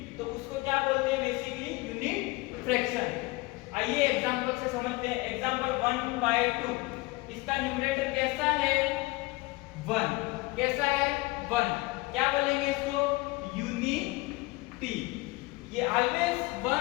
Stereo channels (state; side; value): quieter; right; 22.7 dB